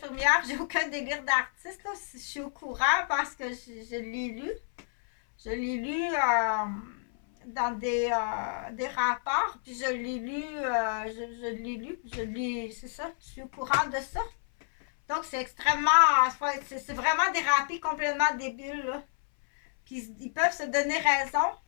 j'ai aucun délire d'artiste, là. Je suis au courant parce que je l'ai lu. Je l'ai lu dans des rapports, puis je l'ai lu, c'est ça, je suis au courant de ça. Donc, c'est extrêmement, c'est vraiment dérapé, complètement débile, là. Puis, ils peuvent se donner raison.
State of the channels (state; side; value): silent; right; 58 dB below the other